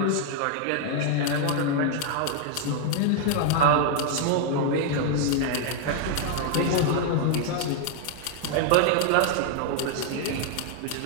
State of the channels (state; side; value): different; both; correlation 0.00